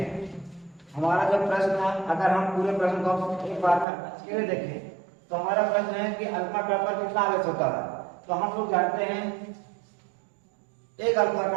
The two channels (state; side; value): drops out; left; at 3.9 s